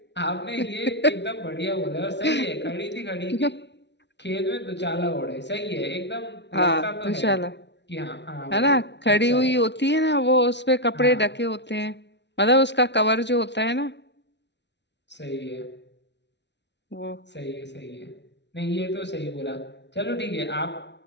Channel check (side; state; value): right; late; 0.51 ms